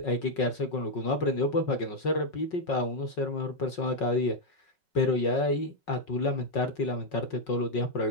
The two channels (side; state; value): right; late; 5.5 ms